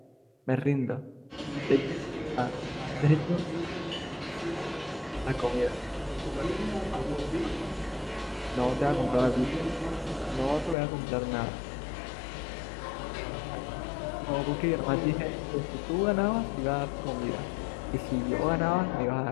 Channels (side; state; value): right; drops out; at 10.8 s